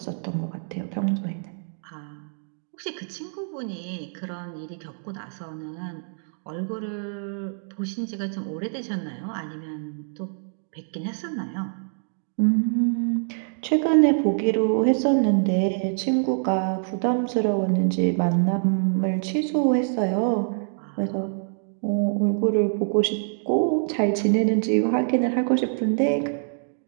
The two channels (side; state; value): left; silent; digital silence